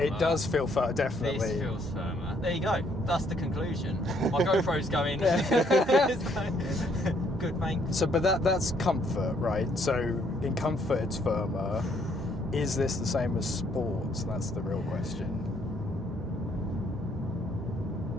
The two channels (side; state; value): both; normal; correlation 0.68